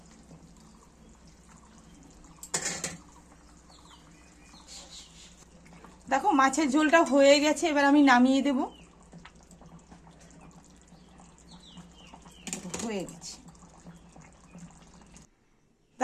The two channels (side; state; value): both; identical; correlation 1.00